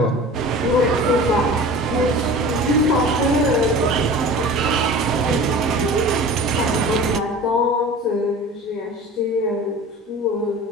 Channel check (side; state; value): both; normal; correlation 0.38